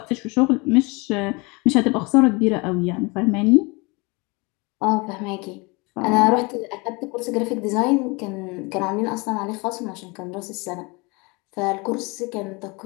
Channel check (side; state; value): right; quieter; 27.5 dB